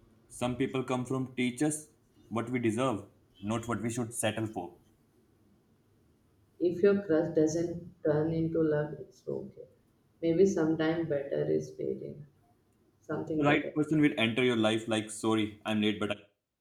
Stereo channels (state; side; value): identical; both; correlation 1.00